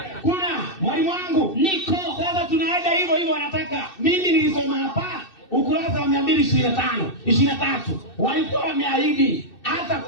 Kuna mwalimu wangu niko. Sasa tunaenda hivyo wanataka. Mimi nilisoma hapa ukurasa wa 223 walikuwa wameahidi hata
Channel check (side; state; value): right; late; 2.6 ms